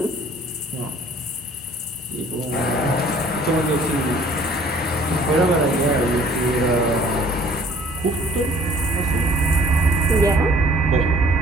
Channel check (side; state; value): both; normal; correlation 0.55